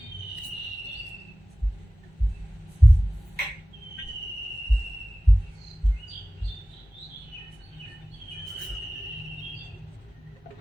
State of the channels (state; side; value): normal; both; correlation 0.97